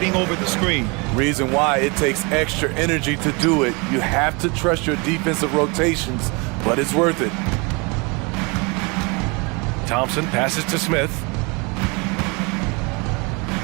over the screen. Reason why it takes extra energy to do it. You have to trust your defensive rotations, but it's worth it. Thompson passes to Smith.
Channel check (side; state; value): left; quieter; 29.5 dB